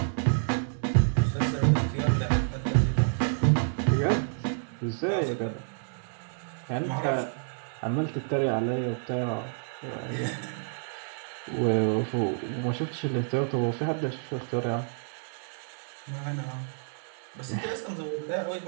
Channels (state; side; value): silent; left; digital silence